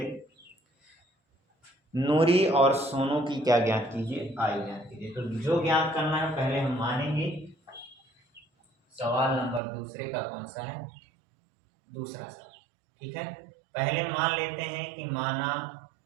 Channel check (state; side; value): drops out; left; at 9.6 s